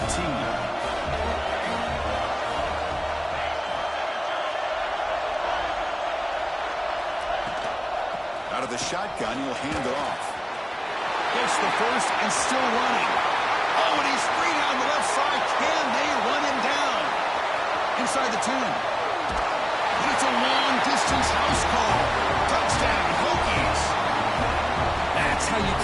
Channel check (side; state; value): both; identical; correlation 1.00